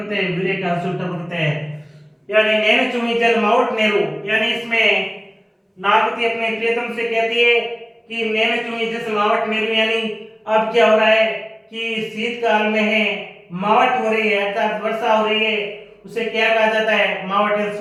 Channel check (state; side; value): identical; both; correlation 1.00